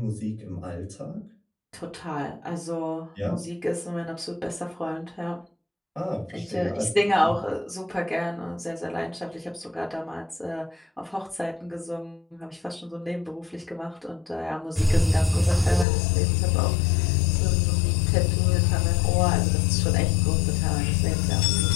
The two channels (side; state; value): right; drops out; at 15.9 s